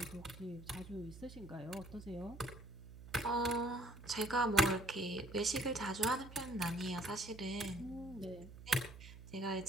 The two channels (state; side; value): noise; right; hum, 15 dB below the sound